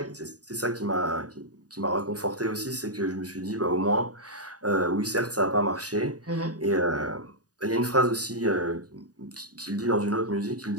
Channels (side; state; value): left; late; 0.68 ms